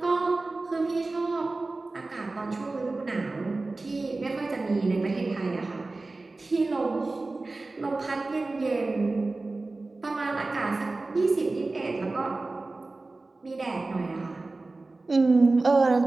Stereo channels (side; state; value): left; quieter; 3.3 dB